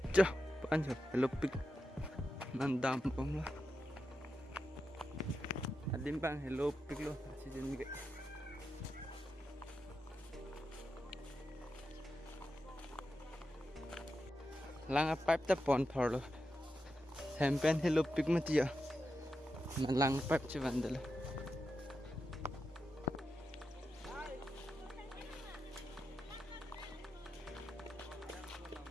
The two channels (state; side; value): normal; both; correlation 0.88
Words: cho pan cho hello pik mandam pom la adim bang hello pik lo achijun ke lang pipe ta pon phor lo hempen hello pik matia na lang pipe che vandala